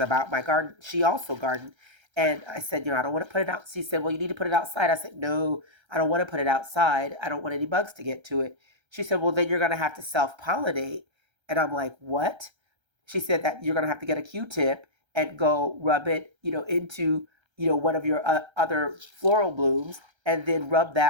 my garden. She also gardened. And I said, I don't want to put it out. She said, well, you need to put it outside. I said, no, I don't want to put it outside. I don't want any bugs to get to it. She said, well, then you're going to have to self pollinate. And I'm like, what? She said that you're going to have to get a Q-tip and go rub it, into, one of your other floral blooms, and then rub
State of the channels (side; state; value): left; late; 1.3 ms